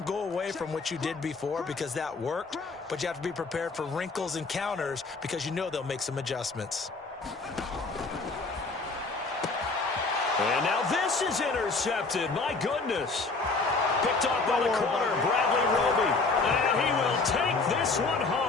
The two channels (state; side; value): quieter; right; 3.9 dB